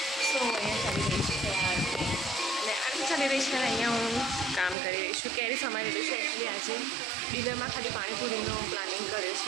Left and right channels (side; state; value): left; drops out; at 4.8 s